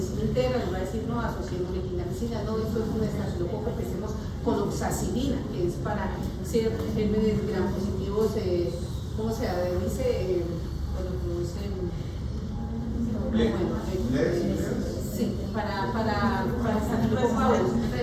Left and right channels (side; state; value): both; identical; correlation 1.00